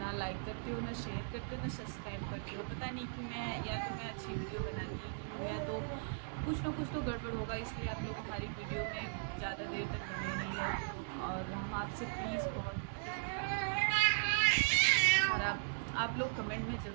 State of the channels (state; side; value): silent; left; digital silence